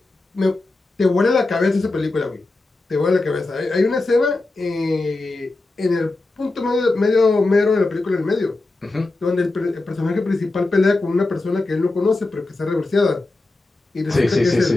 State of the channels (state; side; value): quieter; right; 3.1 dB